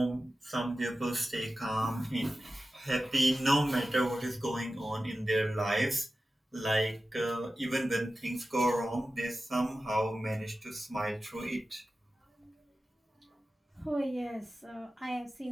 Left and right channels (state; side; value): normal; both; correlation 0.94